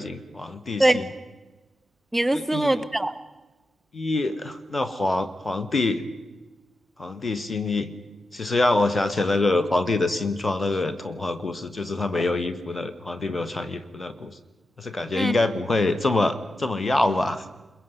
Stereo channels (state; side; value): normal; both; correlation 0.90